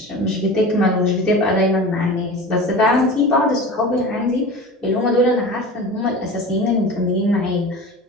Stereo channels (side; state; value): both; normal; correlation 0.34